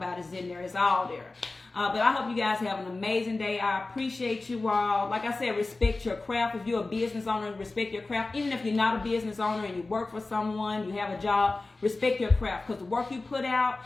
is in there. It's all there. But I hope you guys have an amazing day. I appreciate you all. Like I said, respect your craft. If you're a business owner, respect your craft. Even if you're not a business owner and you work for someone, you have a job, respect your craft. Because the work you put out,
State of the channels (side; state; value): right; quieter; 3.3 dB